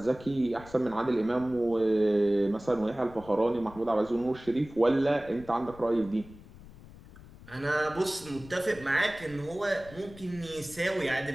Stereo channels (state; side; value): noise; left; rumble, 19 dB below the sound